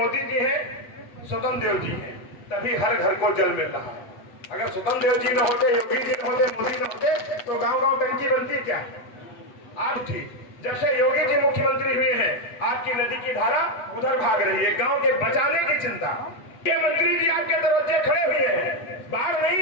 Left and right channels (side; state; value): right; late; 8.0 ms